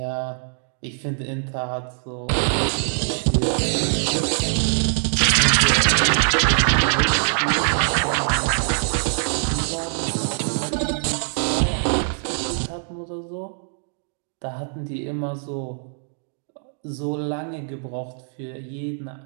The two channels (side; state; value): left; silent; digital silence